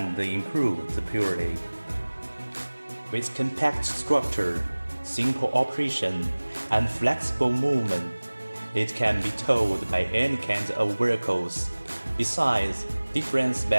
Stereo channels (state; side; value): inverted; both; correlation -1.00